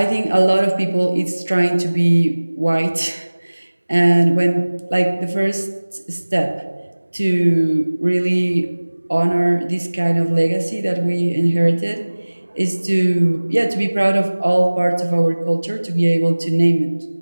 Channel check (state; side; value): inverted; both; correlation -1.00